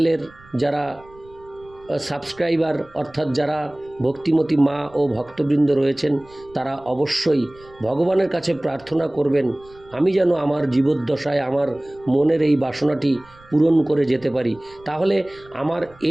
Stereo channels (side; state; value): right; noise; rumble, 26 dB below the sound